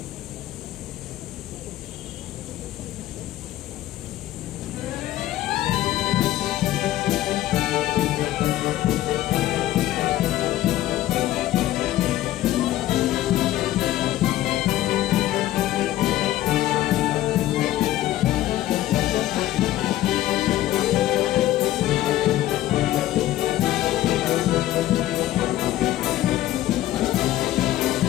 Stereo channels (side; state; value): right; quieter; 14.5 dB